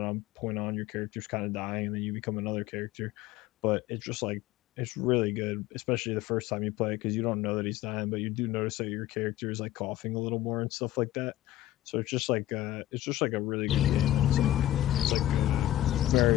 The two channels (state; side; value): quieter; right; 14.3 dB